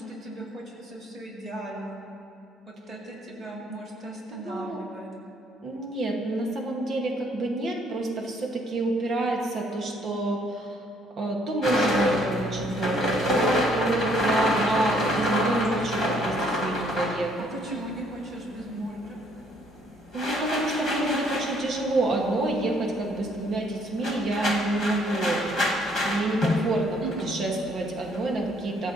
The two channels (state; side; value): normal; both; correlation 0.65